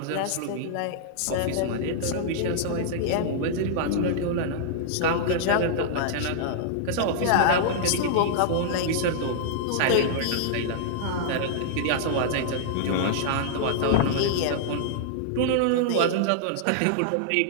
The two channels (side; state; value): both; different; correlation -0.01